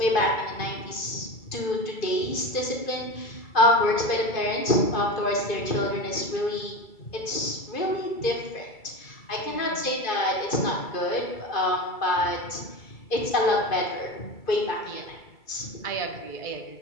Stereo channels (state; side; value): late; right; 2.3 ms